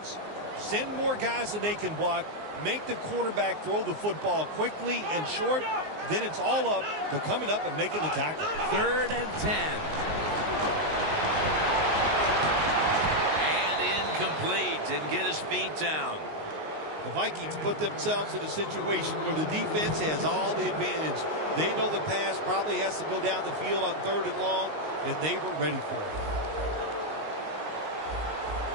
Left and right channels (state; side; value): late; left; 19 ms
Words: Send more guys than they can block. Make the quarterback throw the football quickly and short. Then it's all up to coming up and making the tackle. 3rd and 10. And incomplete. Didn't get his feet down. The Vikings put themselves in a situation where the defense has all the advantage. They know the pass probably has to go down the field on 3rd and long, and they were ready for it.